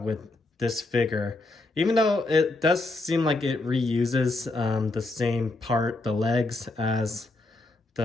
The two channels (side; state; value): right; quieter; 3.0 dB